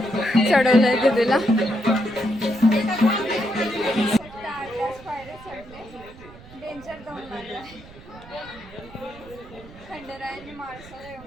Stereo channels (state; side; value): noise; right; rumble, 19 dB below the sound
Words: चढवलंय दिदीला. डेंजर दम लागलाय. खंडेरायाने माणसाला